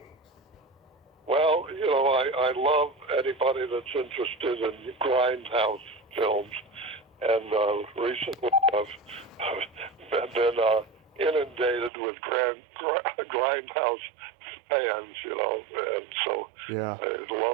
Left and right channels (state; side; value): drops out; left; at 11.9 s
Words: Well, I love anybody that's interested in grindhouse films, and recently I've been inundated with grindhouse fans, and so Yeah. I